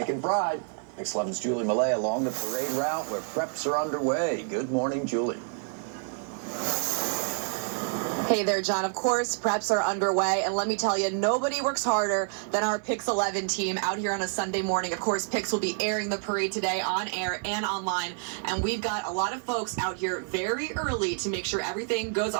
pride. Pix 11's Julie Millet along the parade route where preps are underway. Good morning, Julie. Hey there, John. Of course, preps are underway, and let me tell you, nobody works harder than our Pix 11 team out here on a Sunday morning. Of course, Pix will be airing the parade today on air and online, and we've got a lot of folks out here very early to make sure everything goes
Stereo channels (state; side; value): silent; left; 57 dB below the other